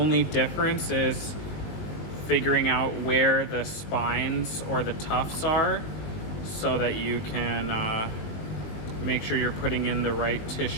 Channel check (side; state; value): right; late; 20 ms